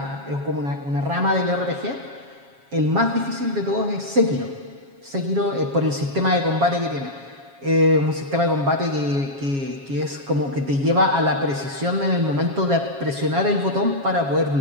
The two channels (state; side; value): late; left; 7.3 ms